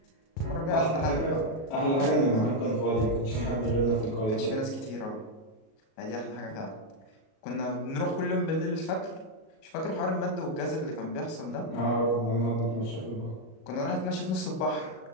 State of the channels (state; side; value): late; right; 37 ms